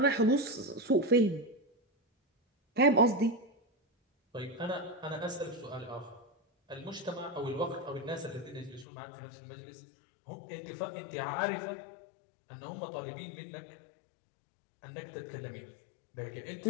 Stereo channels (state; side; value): drops out; right; at 8.8 s